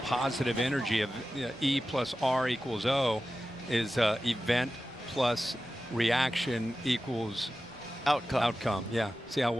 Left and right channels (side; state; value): left; noise; rumble, 28 dB below the sound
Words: positive energy of E plus R equals O is event plus reaction equals outcome. Yeah. See how